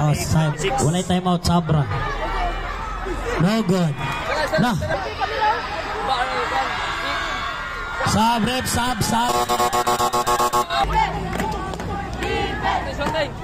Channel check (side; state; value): both; identical; correlation 1.00